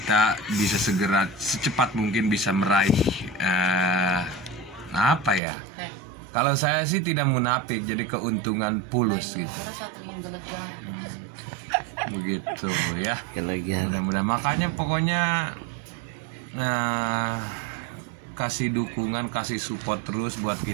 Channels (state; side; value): drops out; left; at 5.4 s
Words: bisa segera secepat mungkin bisa meraih apa ya? Kalau saya sih tidak munafik, jadi keuntungan pulus gitu. Begitu ya. Mudah-mudahan makanya pokoknya kasih dukungan, kasih support terus buat